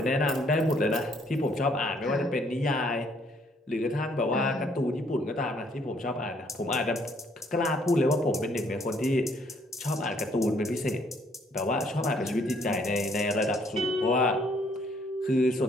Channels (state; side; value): normal; both; correlation 0.65